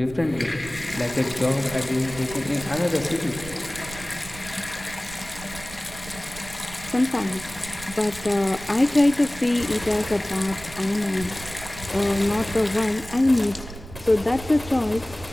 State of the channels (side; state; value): right; noise; rumble, 15 dB below the sound